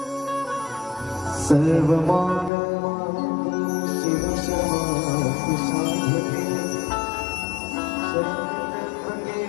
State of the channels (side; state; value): right; drops out; at 2.5 s